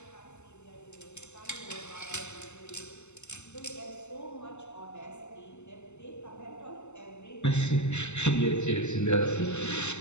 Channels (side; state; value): right; late; 0.83 ms